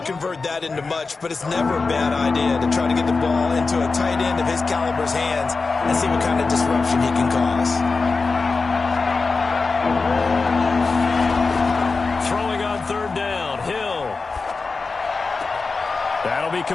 convert that into much, but it's never a bad idea to try to get the ball into a tight end of his caliber's hands and see what kind of disruption he can cause. Throwing on 3rd down, Hill. That'll be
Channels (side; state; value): right; quieter; 4.2 dB